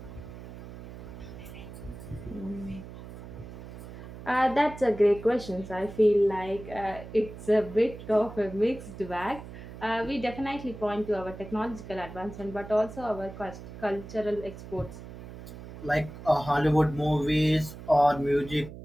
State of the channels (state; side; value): noise; right; hum, 13 dB below the sound